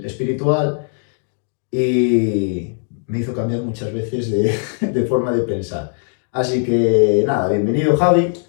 espiritual y me hizo cambiar muchas veces de forma de pensar. Así que nada, bienvenido Javi.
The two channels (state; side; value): silent; right; digital silence